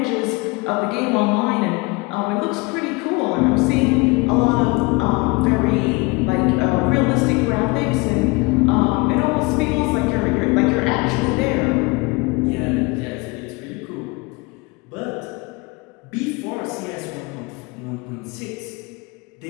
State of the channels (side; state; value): right; quieter; 26.5 dB